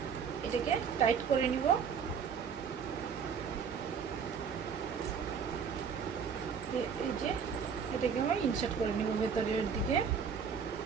এটাকে টাইট করে নিব। এই যে এটাকে আমি ইনসার্ট করে নিব ভেতরের দিকে।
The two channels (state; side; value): quieter; left; 6.5 dB